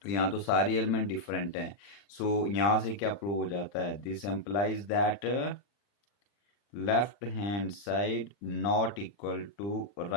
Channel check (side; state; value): right; late; 40 ms